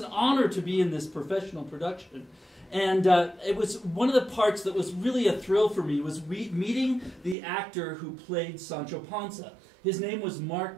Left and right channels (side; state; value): left; drops out; at 7.4 s